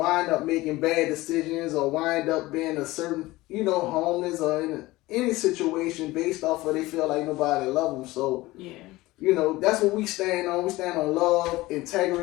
up making bad decisions or wind up being a certain, homeless or in any situation based off of they feel like nobody love them. So, that's what we stand on. We stand on love,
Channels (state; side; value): quieter; right; 19.2 dB